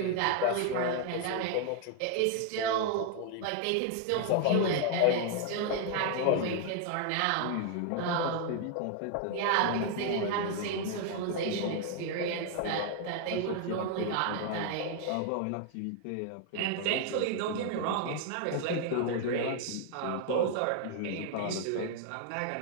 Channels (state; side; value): different; both; correlation 0.00